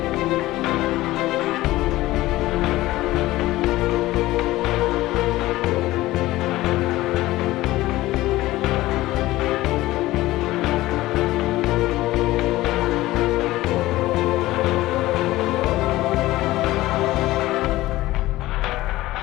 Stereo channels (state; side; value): quieter; right; 17.3 dB